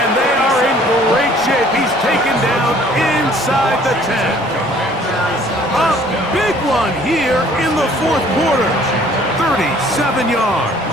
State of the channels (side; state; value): both; normal; correlation 0.56